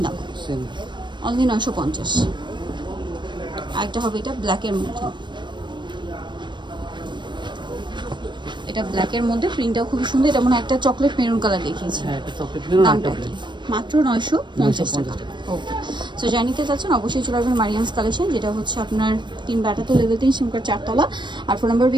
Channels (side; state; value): left; late; 0.22 ms